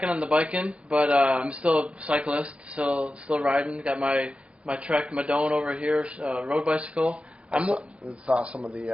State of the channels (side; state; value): left; late; 0.061 ms